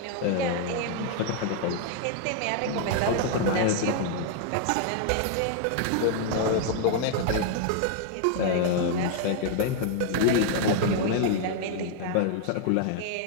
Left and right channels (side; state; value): both; different; correlation 0.00